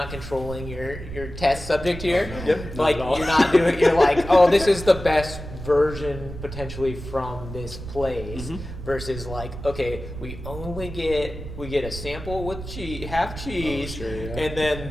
controlling your test subject here. Yep. Like Not at all. you're not doing. You're like, oh, this is the best version potentially from this place. Versus like, okay, we get a sample with half cheese, sure, yeah. and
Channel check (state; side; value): noise; right; rumble, 10 dB below the sound